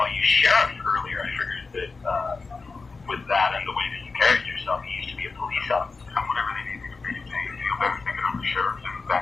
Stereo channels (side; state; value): right; quieter; 4.2 dB